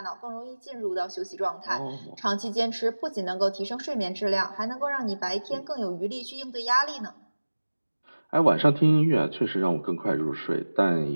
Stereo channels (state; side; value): inverted; both; correlation -1.00